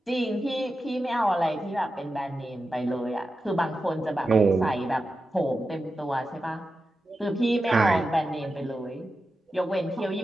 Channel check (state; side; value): normal; both; correlation 0.91